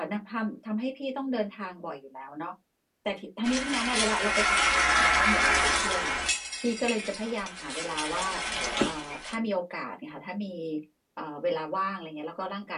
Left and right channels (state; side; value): identical; both; correlation 1.00